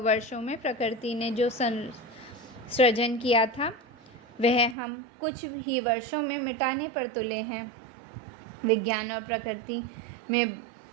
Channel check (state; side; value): drops out; left; at 4.8 s